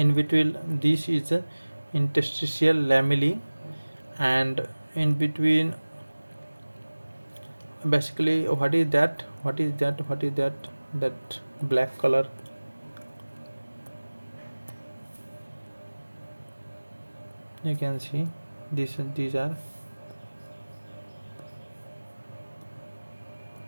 between this is the interstitial lamellae, and in between, basically, what is that that black color? You can see these are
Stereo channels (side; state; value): both; inverted; correlation -1.00